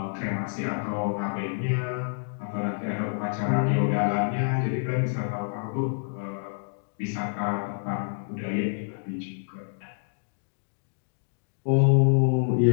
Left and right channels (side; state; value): right; silent; digital silence